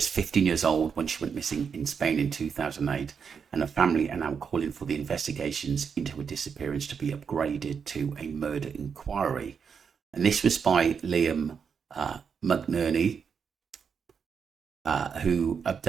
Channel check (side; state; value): left; quieter; 6.5 dB